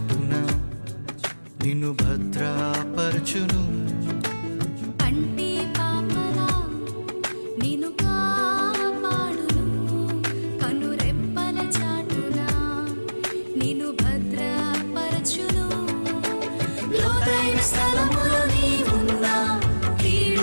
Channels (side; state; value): both; inverted; correlation -1.00